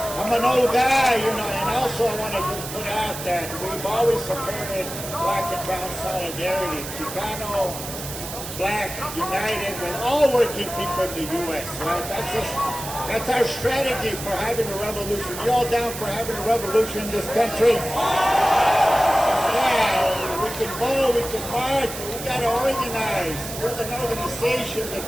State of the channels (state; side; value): noise; right; hiss, 9 dB below the sound